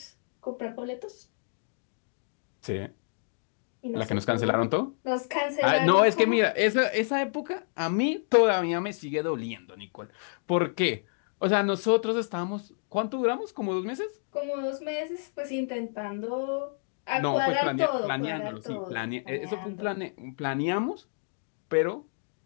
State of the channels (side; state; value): right; silent; digital silence